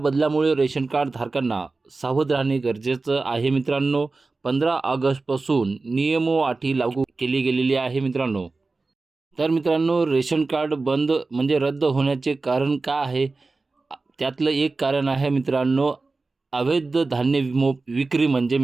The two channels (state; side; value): quieter; left; 3.7 dB